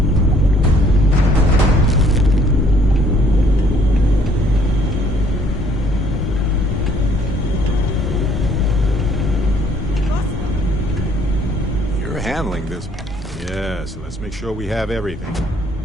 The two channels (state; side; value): normal; both; correlation 0.62